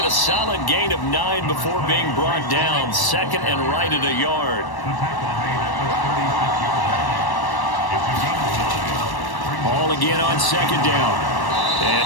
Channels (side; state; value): right; late; 1.1 ms